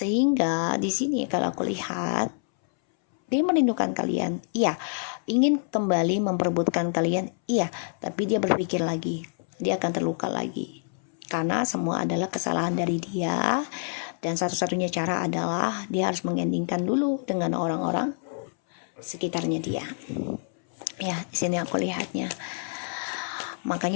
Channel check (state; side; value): silent; right; 60 dB below the other